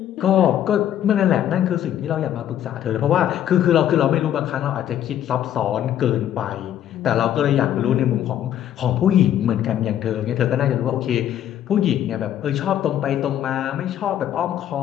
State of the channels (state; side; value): quieter; right; 11.0 dB